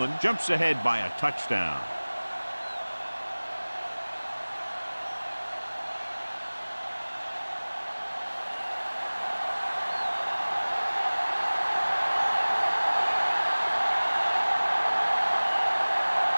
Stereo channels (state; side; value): inverted; both; correlation -1.00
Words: jumps ahead by a touchdown.